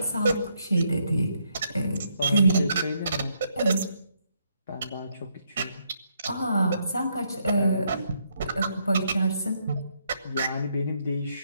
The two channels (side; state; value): both; inverted; correlation -0.75